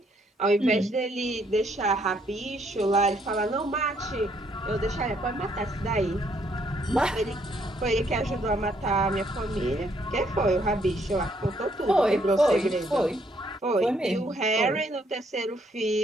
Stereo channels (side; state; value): both; normal; correlation 0.69